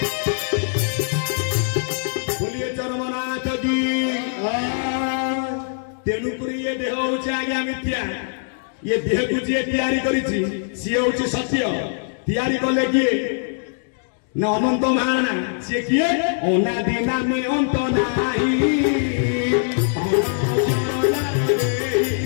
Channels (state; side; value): silent; right; digital silence